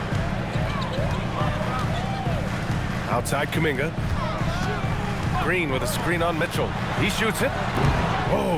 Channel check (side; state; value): both; identical; correlation 1.00